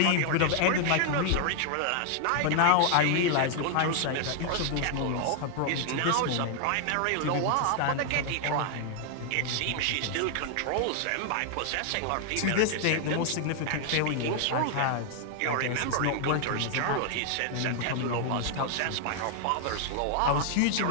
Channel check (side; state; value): both; different; correlation 0.00